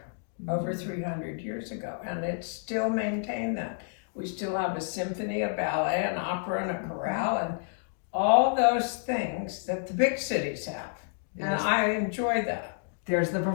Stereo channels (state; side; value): silent; right; digital silence